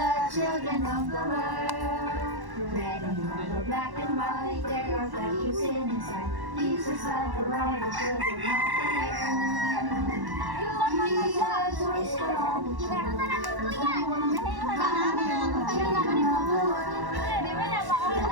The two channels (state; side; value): late; left; 1.1 ms